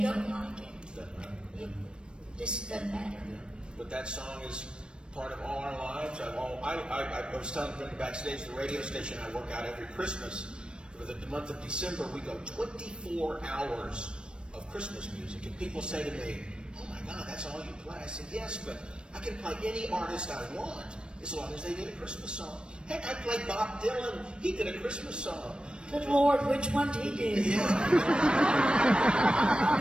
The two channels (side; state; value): left; late; 0.055 ms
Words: don't like it, Doesn't matter. it just doesn't matter. But that song is part of all our lives. I was telling Brenda backstage, the radio station I work out every Christmas. For the month of December, we go 24 hours of Christmas music. And people say to me, "Oh my God, that's all you play?" I said, "Yes, but I can play any artist I want as long as they did a Christmas song." Heck, I played Bob Dylan. He did a Christmas song. Good Lord, which one did he do? Yeah.